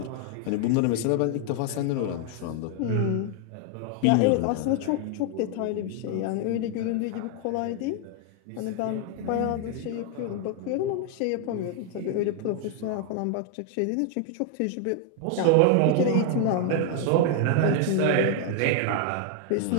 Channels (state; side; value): different; both; correlation 0.00